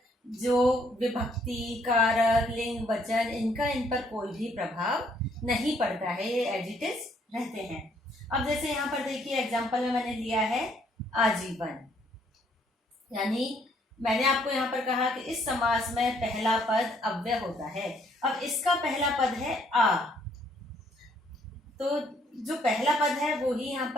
जो विभक्ति, कारक, लिंग, वचन इनका इन पर कोई भी प्रभाव नहीं पड़ता है, ये एज इट इज रहते हैं। अब जैसे यहाँ पर देखिए एग्जाम्पल में मैंने लिया है आजीवन, यानी मैंने आपको यहाँ पर कहा कि इस समास में पहला पद अव्यय होता है। अब इसका पहला पद है आ, तो जो पहला पद है वो ही यहाँ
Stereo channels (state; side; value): normal; both; correlation 0.67